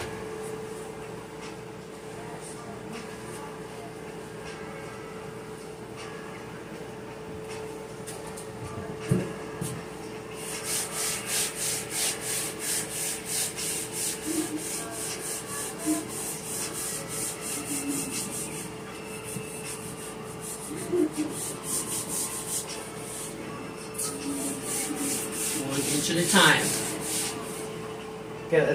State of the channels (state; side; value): identical; both; correlation 1.00